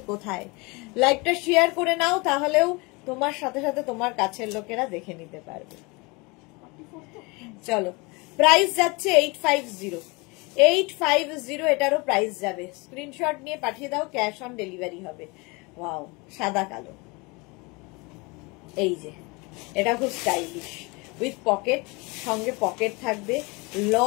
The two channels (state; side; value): quieter; right; 27.1 dB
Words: কোথায়? লাইভটা শেয়ার করে নাও, তাহলেও তোমার সাথে সাথে তোমার কাছের লোকেরা দেখে নিতে পারবে। চলো, প্রাইস যাচ্ছে 850, 850, এটারও প্রাইস যাবে। স্ক্রিনশট নিয়ে পাঠিয়ে দাও, ক্যাশ অন ডেলিভারি হবে। ওয়াও, সাদা কালো, এই যে এটা খুব স্টাইলিশ উইথ পকেট, সঙ্গে পকেট থাকবে,